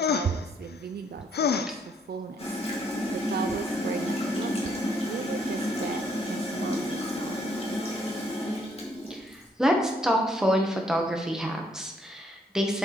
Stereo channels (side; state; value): both; normal; correlation 0.69